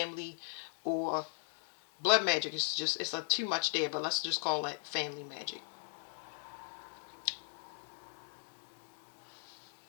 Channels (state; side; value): silent; right; digital silence